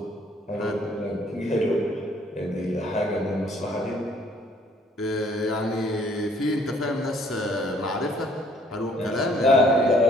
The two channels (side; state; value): both; normal; correlation 0.61